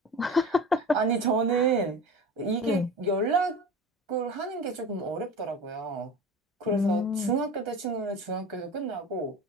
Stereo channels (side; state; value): both; normal; correlation 0.34